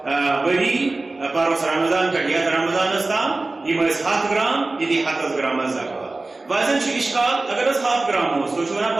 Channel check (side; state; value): left; quieter; 3.2 dB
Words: ؤری پروس رمضان پٮ۪ٹھ یتھ رمضانس تام یِم ٲسۍ 100 گرام یہِ دی 100 گرامس زکات ویسے اشکال اگر 100 گرام اوس تُہۍ چھِو ونان